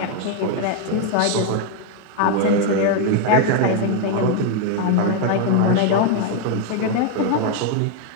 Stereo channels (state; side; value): different; both; correlation 0.01